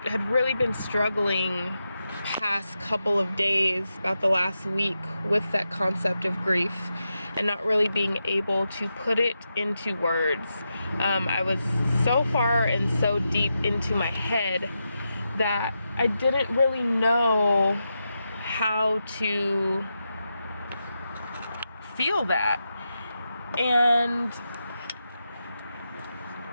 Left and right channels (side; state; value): both; inverted; correlation -0.88